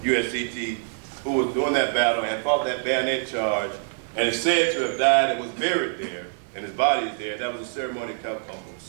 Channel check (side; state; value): left; silent; 62 dB below the other